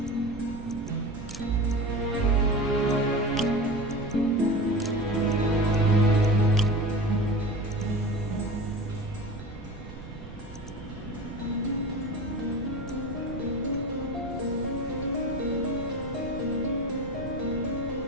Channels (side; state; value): right; noise; rumble, 14 dB below the sound